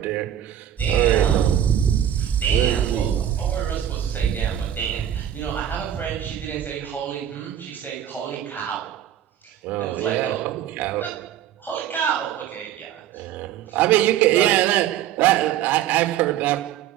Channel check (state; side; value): quieter; left; 10.8 dB